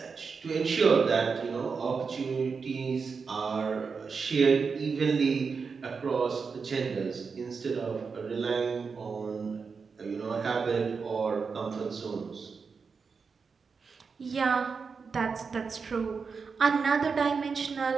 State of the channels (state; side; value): quieter; left; 5.3 dB